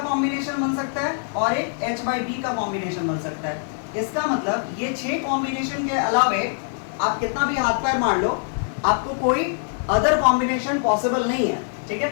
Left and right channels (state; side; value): silent; right; digital silence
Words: कॉम्बिनेशन बन सकता है, और एक H/B का कॉम्बिनेशन बन सकता है। इसका मतलब ये 6 कॉम्बिनेशन के अलावे आप कितना भी हाथ पैर मार लो, आपको कोई अदर कॉम्बिनेशन पॉसिबल नहीं है। ठीक है,